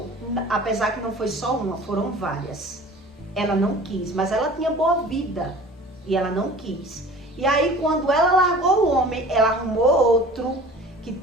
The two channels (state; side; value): normal; both; correlation 0.43